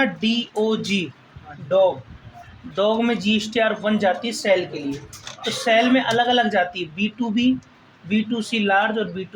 DOG, डॉग, डॉग में GSTR 1 जाती है सेल के लिए, तो सेल में अलग अलग जाती है, B2B, B2C लार्ज और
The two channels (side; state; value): both; identical; correlation 1.00